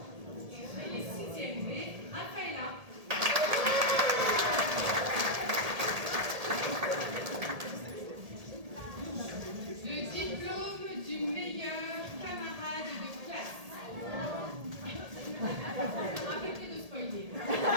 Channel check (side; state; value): left; late; 1.8 ms